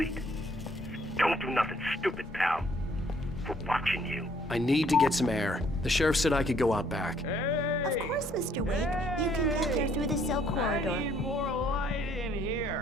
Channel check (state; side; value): normal; both; correlation 0.64